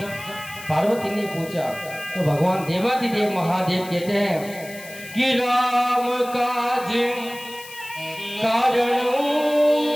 पार्वती ने पूछा तो भगवान देवादिदेव महादेव कहते हैं कि राम काज कारण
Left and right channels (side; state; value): left; noise; hiss, 16 dB below the sound